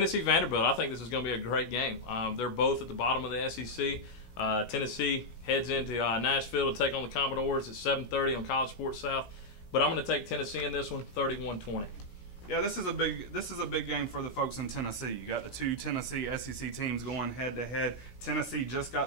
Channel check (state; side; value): late; right; 16 ms